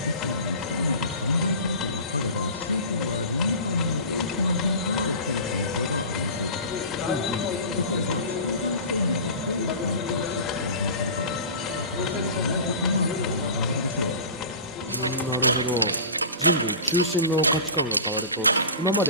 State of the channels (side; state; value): both; inverted; correlation -0.35